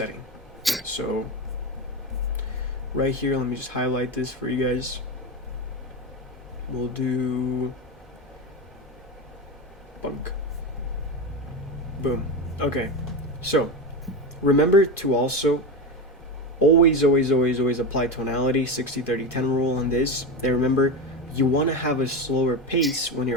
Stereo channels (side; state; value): both; normal; correlation 0.19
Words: So right here, let me just highlight this for you guys. We'll do bunk. Boom. Okay. So remember to also always, always, always, always apply tonality, 60-30-10 rule on this. And remember, you want to have a slower pace when